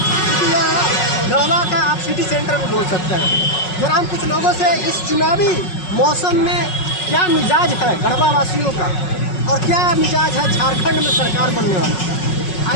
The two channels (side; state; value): right; late; 5.4 ms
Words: यह गढ़वा का आप सिटी सेंटर भी बोल सकते हैं। जरा हम कुछ लोगों से इस चुनावी मौसम में क्या मिजाज है गढ़वा वासियों का और क्या मिजाज है झारखंड में सरकार बनने वाली,